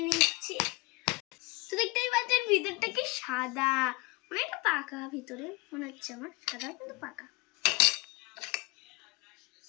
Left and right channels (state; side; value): quieter; right; 26.3 dB